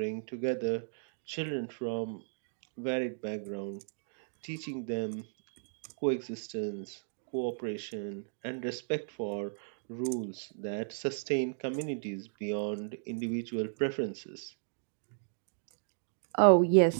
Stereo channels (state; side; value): silent; left; digital silence